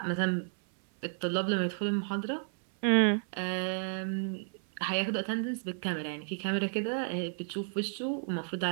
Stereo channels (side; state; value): left; silent; 56 dB below the other